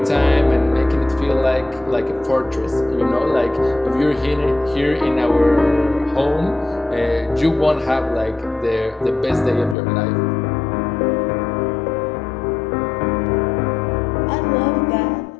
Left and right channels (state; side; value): drops out; right; at 9.8 s